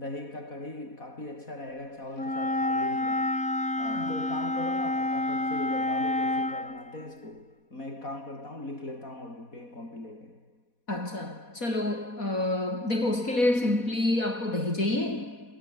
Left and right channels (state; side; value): late; right; 4.1 ms